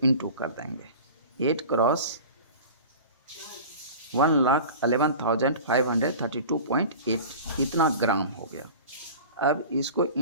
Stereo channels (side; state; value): both; inverted; correlation -0.37